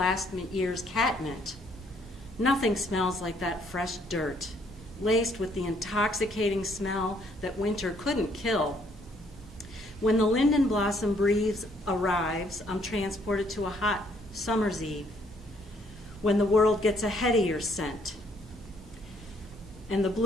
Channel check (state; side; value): normal; both; correlation 0.67